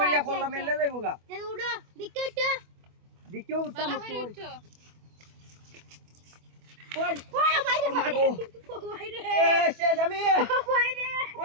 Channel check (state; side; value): late; left; 24 ms